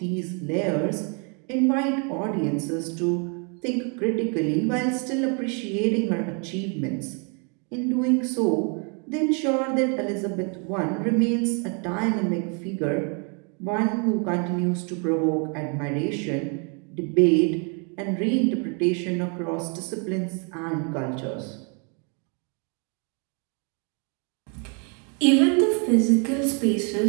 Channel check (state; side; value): quieter; left; 36.9 dB